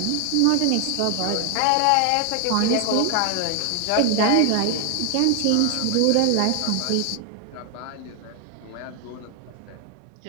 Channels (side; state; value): both; different; correlation 0.00